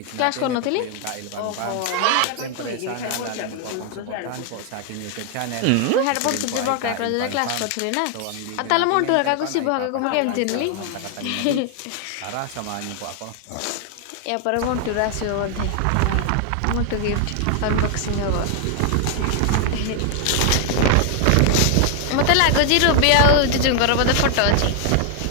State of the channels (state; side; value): different; both; correlation 0.00